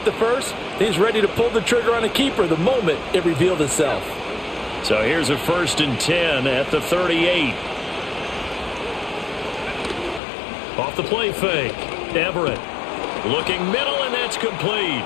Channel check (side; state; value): right; drops out; at 10.2 s